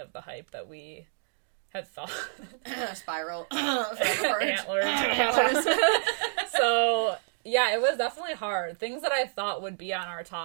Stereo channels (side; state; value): left; silent; digital silence